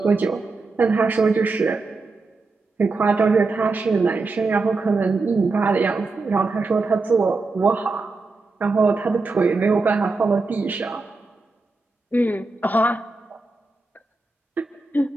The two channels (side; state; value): left; quieter; 3.7 dB